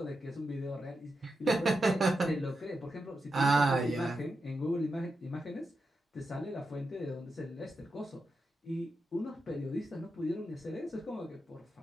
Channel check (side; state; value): both; normal; correlation 0.87